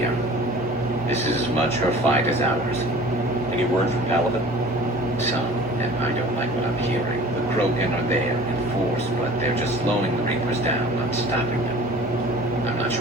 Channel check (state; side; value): normal; both; correlation 0.44